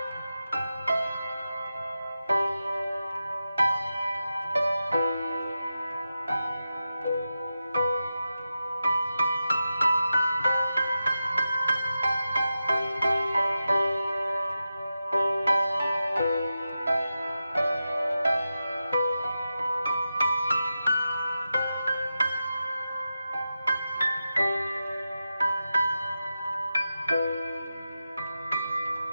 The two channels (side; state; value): both; inverted; correlation -0.91